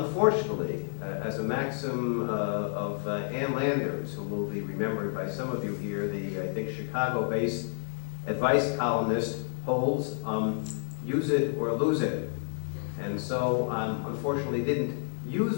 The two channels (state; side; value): silent; right; digital silence